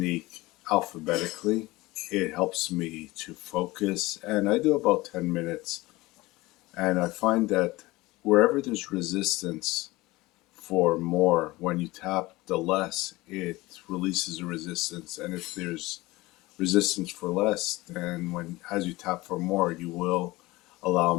alphabetically. It helps me to focus, and I do about 10 minutes. And I find that wherever there's resistance for more, when you tap the less, it releases the resistance. And if there's resistance for less, then when as you tap for more, you will allow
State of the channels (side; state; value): right; quieter; 20.3 dB